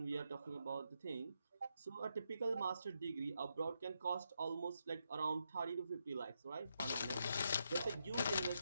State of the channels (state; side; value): inverted; both; correlation -0.82